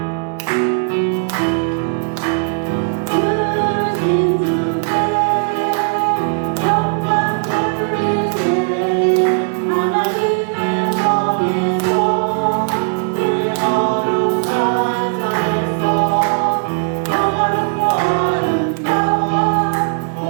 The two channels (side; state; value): left; quieter; 39.0 dB